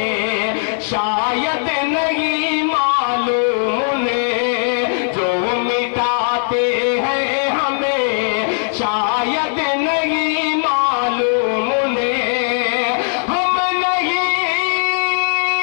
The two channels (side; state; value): right; silent; 67 dB below the other